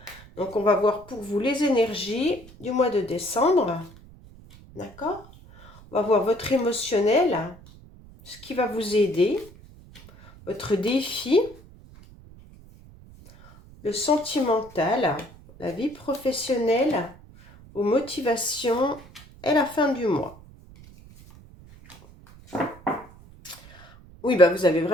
Donc, on va voir pour vous les énergies du mois de décembre. D'accord? On va voir votre émotionnel, ce qui va vous aider, votre défi, le sentimental, la vie professionnelle, vos motivations et la fin du mois. Oui, bah vous avez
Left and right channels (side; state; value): right; noise; rumble, 22 dB below the sound